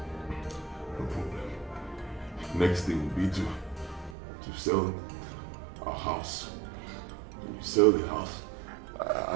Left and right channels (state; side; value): drops out; left; at 4.2 s